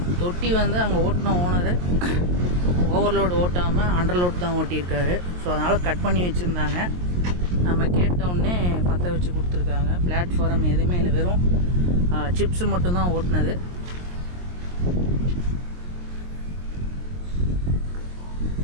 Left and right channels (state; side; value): late; left; 23 ms